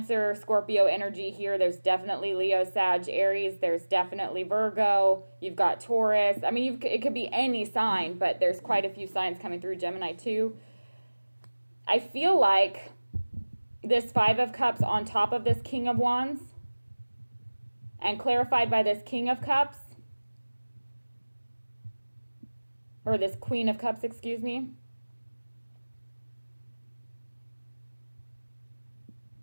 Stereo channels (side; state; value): both; inverted; correlation -1.00